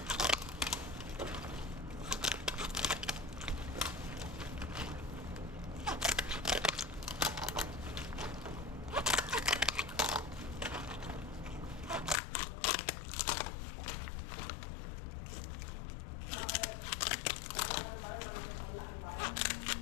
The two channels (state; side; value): drops out; right; at 12.2 s